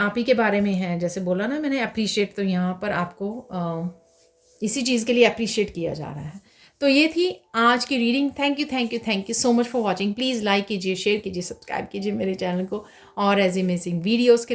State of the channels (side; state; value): both; identical; correlation 1.00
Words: ही के बारे में है, जैसे बोला ना मैंने अप्रिशिएट, तो यहाँ पर आपको इसी चीज़ के लिए अप्रिशिएट किया जा रहा है। तो ये थी आज की reading. Thank you, thank you, thank you so much for watching. Please like कीजिए, शेयर कीजिए, सब्सक्राइब कीजिए मेरे चैनल को, और एज अमेजिंग वीडियोज़